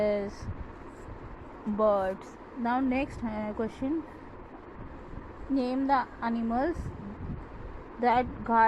birds. Now next question, name the animals that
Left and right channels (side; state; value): both; identical; correlation 1.00